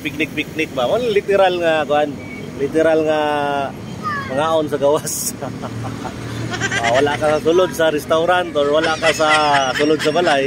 ba? Literal nga kuan. Literal nga mangaon sa gawas. Wala ka sa sulod sa restaurant or wala ka sa sulod sa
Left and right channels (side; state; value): both; identical; correlation 1.00